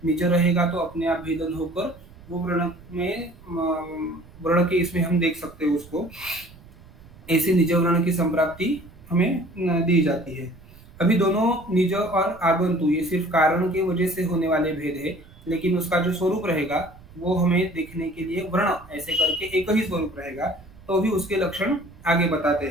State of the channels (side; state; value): right; noise; rumble, 22 dB below the sound